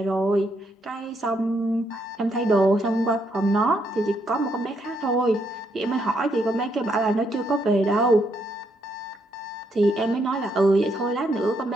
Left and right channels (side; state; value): both; normal; correlation 0.75